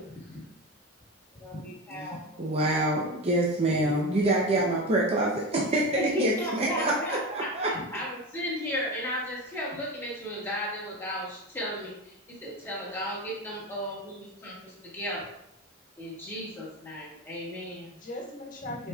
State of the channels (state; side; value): normal; both; correlation 0.24